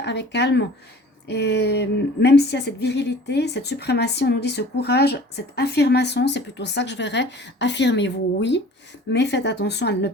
avec calme. Et même s'il y a cette virilité, cette suprématie, on nous dit ce courage, cette affirmation, c'est plutôt ça que je verrais. Affirmez-vous, oui, mais faites attention à ne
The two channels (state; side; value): normal; both; correlation 0.46